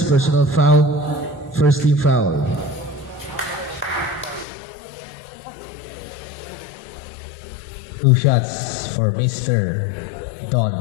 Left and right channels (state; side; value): drops out; right; at 4.5 s